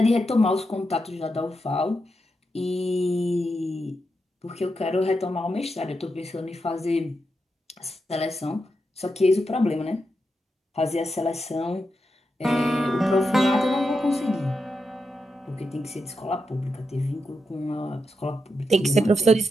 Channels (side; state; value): both; normal; correlation 0.86